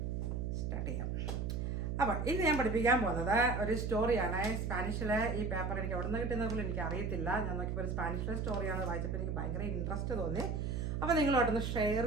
സ്റ്റാർട്ട് ചെയ്യാം. അപ്പോൾ ഇന്ന് ഞാൻ പഠിപ്പിക്കാൻ പോകുന്നത് ഒരു സ്റ്റോറിയാണ്. സ്പാനിഷിലെ ഈ പേപ്പർ എനിക്ക് എവിടെ നിന്ന് കിട്ടുന്നത് പോലും എനിക്ക് അറിയത്തില്ല. ഞാൻ നോക്കിയപ്പോൾ ഒരു സ്പാനിഷിലെ സ്റ്റോറിയാണ് വായിച്ചപ്പോൾ എനിക്ക് ഭയങ്കര ഇൻട്രസ്റ്റ് തോന്നി. അപ്പോൾ നിങ്ങളോട്ടൊന്ന് ഷെയർ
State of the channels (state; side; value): noise; right; hum, 1 dB below the sound